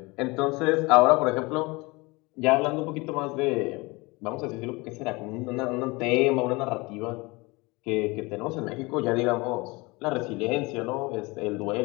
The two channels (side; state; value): right; quieter; 24.7 dB